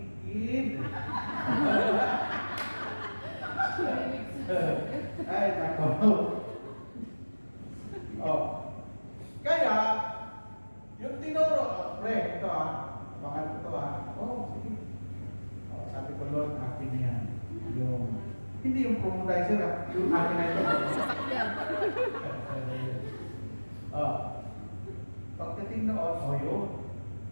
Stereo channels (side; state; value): both; inverted; correlation -1.00